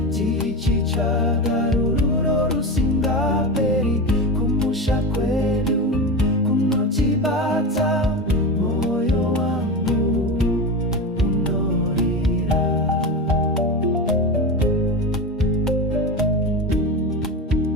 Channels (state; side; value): normal; both; correlation 0.22